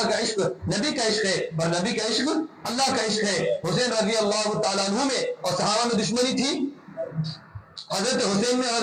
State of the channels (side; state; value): both; identical; correlation 1.00